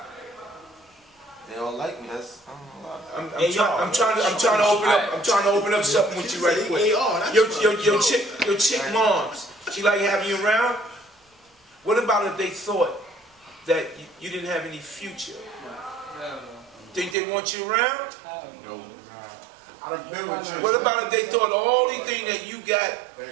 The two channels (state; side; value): drops out; left; at 17.2 s